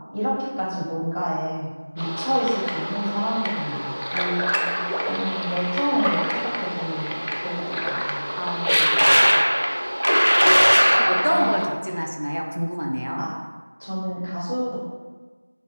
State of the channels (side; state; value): both; inverted; correlation -1.00